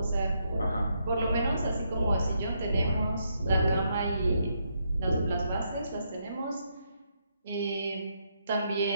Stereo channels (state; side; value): inverted; both; correlation -0.78